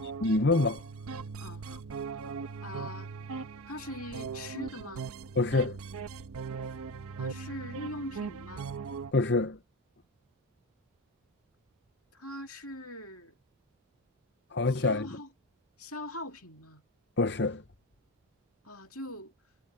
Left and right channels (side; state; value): both; normal; correlation 0.24